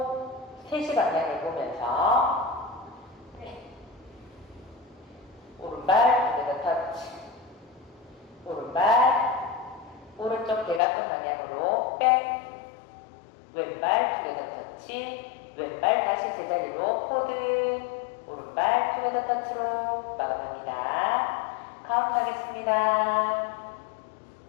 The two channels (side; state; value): right; drops out; at 10.8 s